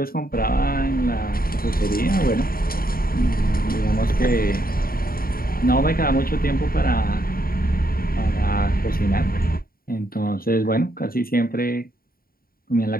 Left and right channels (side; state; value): right; late; 0.43 ms